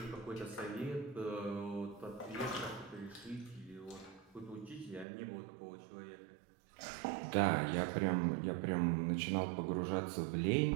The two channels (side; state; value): left; drops out; at 5.1 s